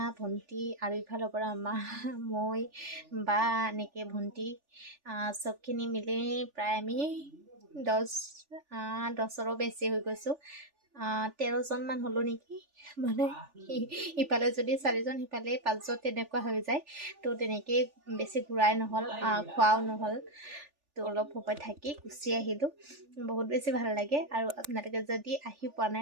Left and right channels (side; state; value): left; late; 3.4 ms